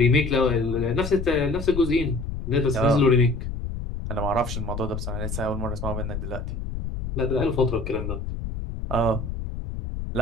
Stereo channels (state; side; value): noise; left; rumble, 6 dB below the sound